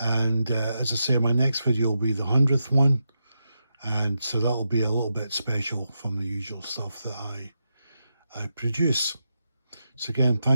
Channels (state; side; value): inverted; both; correlation -0.87